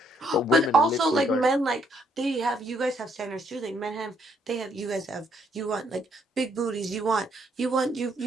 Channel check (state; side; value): normal; both; correlation 0.70